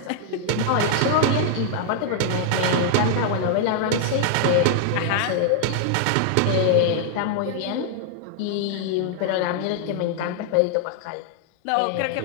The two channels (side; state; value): both; different; correlation 0.00